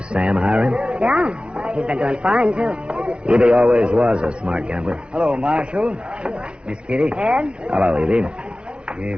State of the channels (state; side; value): late; left; 0.057 ms